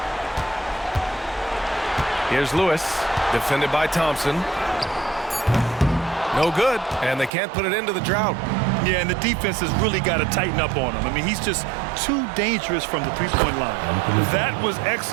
Here's Lewis, defended by Thompson. No good, and they can't put it into the drought. Yeah, and the defense has really got to tighten up on him. I mean, he's just too dangerous from the three-point line. That was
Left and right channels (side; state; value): left; drops out; at 7.3 s